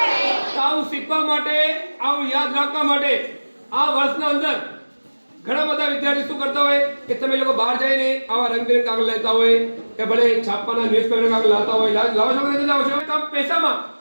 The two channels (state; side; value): inverted; both; correlation -1.00